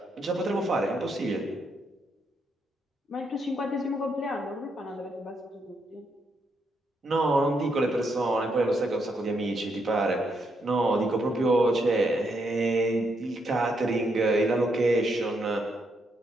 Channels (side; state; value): both; normal; correlation 0.78